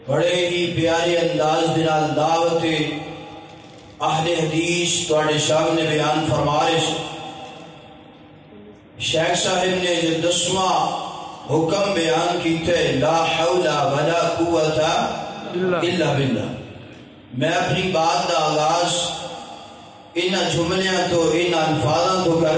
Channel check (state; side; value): identical; both; correlation 1.00